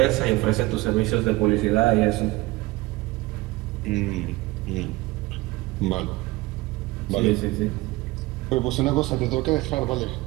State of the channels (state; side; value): quieter; left; 20.3 dB